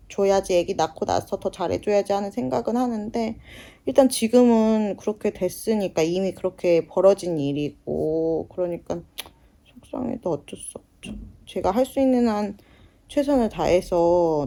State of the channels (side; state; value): both; identical; correlation 1.00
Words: 애기 낳고 나서 더 잘해줘야지 하는 생각은 하는데 일단 지금은 그렇게 됐으니까 이미 그렇게 벌어진 일이고 그러니까 속상해도 어쩔 수 없죠. 제가 할 수 있는 한 최선을